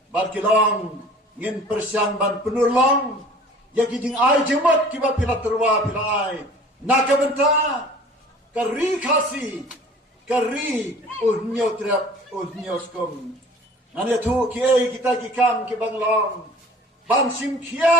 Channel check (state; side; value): normal; both; correlation 0.47